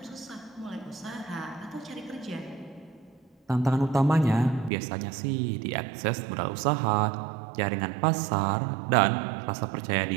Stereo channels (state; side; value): drops out; left; at 4.7 s